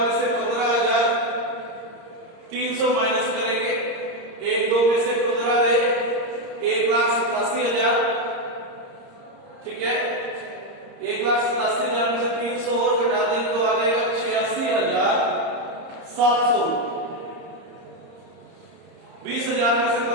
से 15,300 माइनस करेंगे। 1,2 में से 15 ले 1,87,000। ठीक है, 1,87,000 में से 300 और घटा दें तो आ जाएगा 86,000। 700। 20,000 में से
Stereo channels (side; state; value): left; late; 30 ms